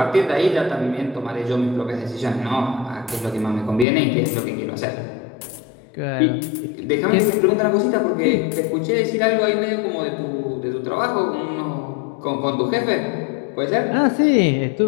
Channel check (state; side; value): drops out; right; at 3.9 s